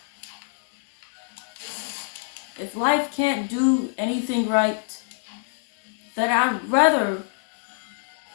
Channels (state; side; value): silent; right; digital silence